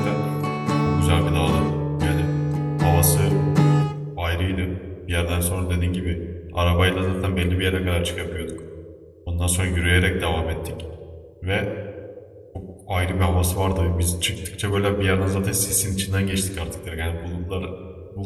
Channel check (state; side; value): identical; both; correlation 1.00